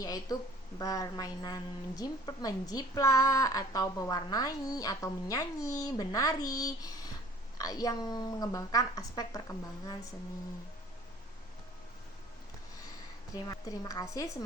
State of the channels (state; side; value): normal; both; correlation 0.51